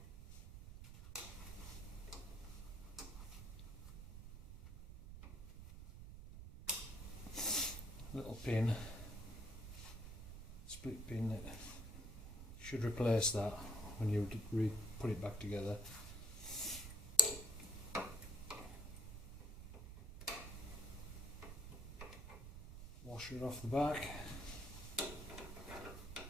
Little pin, split pin that should replace that when you put it back together. Washer off the back.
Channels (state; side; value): noise; right; rumble, 10 dB below the sound